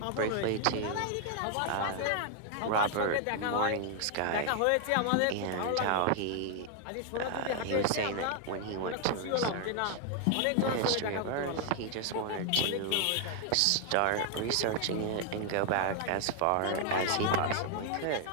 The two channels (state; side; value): different; both; correlation 0.00